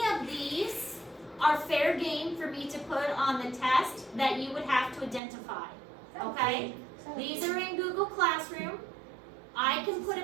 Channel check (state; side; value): drops out; left; at 5.2 s